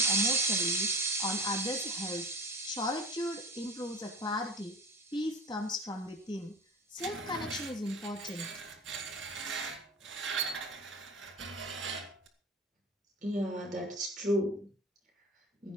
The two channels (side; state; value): both; normal; correlation 0.35